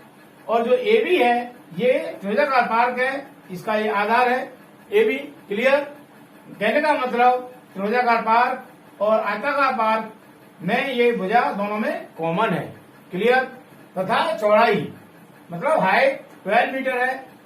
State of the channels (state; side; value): identical; both; correlation 1.00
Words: और जो ए बी है ये त्रिभुजाकार पार्क है, इसका ये आधार है ए बी। क्लियर? कहने का मतलब त्रिभुजाकार पार्क और आयताकार पार्क में ये भुजा दोनों में कॉमन है। क्लियर? तथा चौड़ाई मतलब हाइट 12 मीटर है।